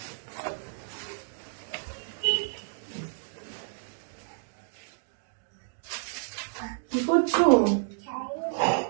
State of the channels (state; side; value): silent; left; digital silence